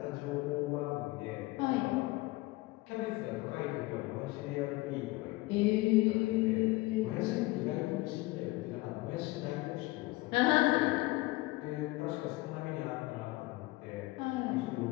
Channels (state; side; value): quieter; right; 21.1 dB